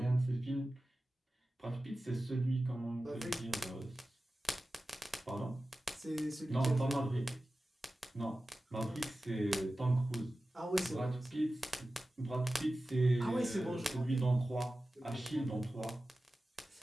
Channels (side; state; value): both; normal; correlation 0.95